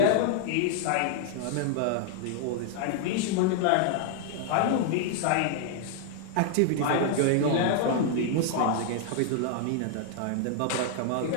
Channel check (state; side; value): different; both; correlation -0.01